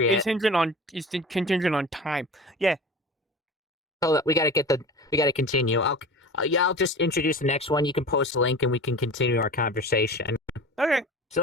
contingent on time. Yeah, Hold up, we gotta continue. Yeah, I'll just introduce the next one. You can post a link and we can continue our conversation. Okay. So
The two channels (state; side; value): normal; both; correlation 0.36